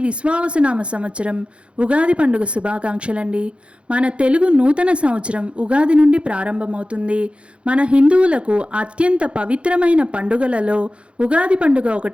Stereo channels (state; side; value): late; left; 0.059 ms